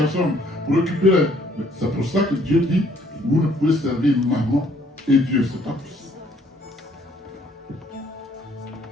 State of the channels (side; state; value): both; normal; correlation 0.63